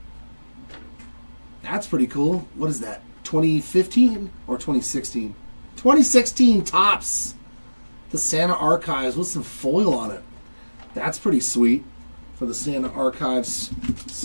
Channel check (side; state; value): both; inverted; correlation -1.00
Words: That's pretty cool. What is that? 2015 or 2016? 2016 Topps. The Santa Archives with some foil on it. That's pretty sweet for the Santa Archives